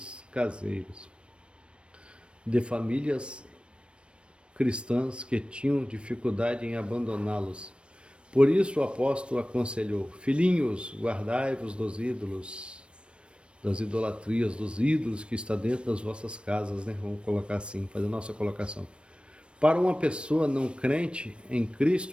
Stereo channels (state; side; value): late; left; 0.058 ms